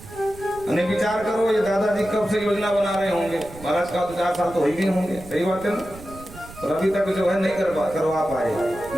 अने विचार करो, ये दादाजी कब से योजना बना रहे होंगे, महाराज का तो 4 साल तो हो ही भी होंगे, सही बात है ना। और अभी तक जो है नहीं करवा पाए,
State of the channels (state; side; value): noise; right; rumble, 17 dB below the sound